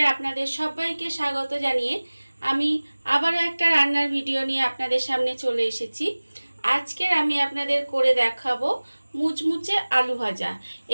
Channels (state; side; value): inverted; both; correlation -1.00